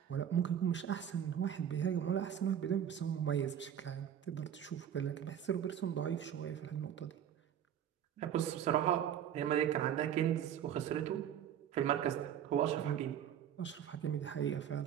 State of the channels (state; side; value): quieter; left; 9.6 dB